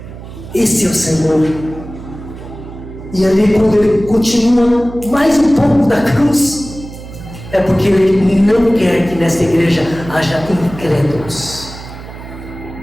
Esse é o Senhor. E ali, quando ele continua mais um pouco da cruz, é porque ele não quer que nesta igreja haja incrédulos.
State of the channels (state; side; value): noise; right; hum, 14 dB below the sound